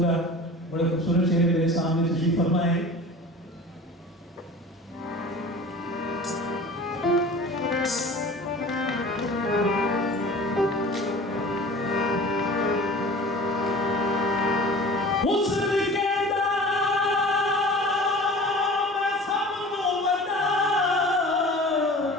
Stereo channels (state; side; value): normal; both; correlation 0.41